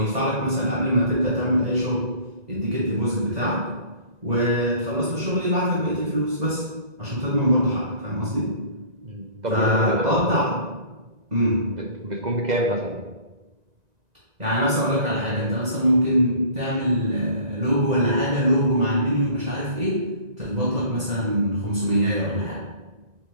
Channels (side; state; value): left; late; 1.9 ms